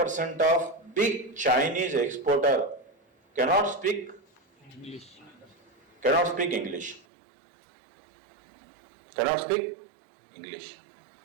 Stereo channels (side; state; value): left; drops out; at 7.1 s